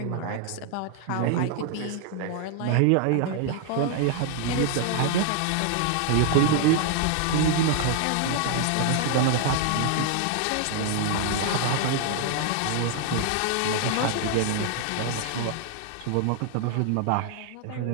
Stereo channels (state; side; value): different; both; correlation 0.00